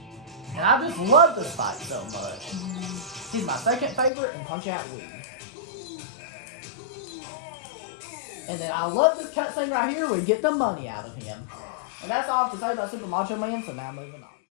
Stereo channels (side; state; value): right; drops out; at 4.1 s